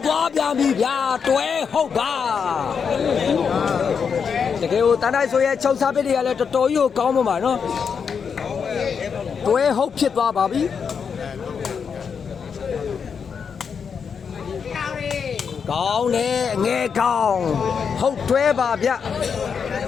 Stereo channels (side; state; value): right; quieter; 6.4 dB